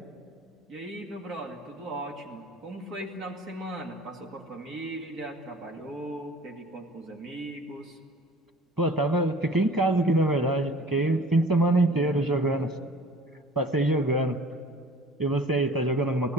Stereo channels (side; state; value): both; normal; correlation 0.47